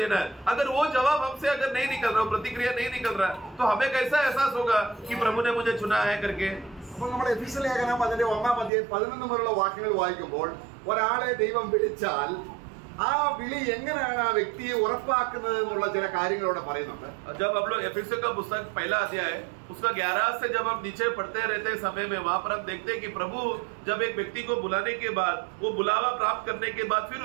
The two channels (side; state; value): left; drops out; at 8.7 s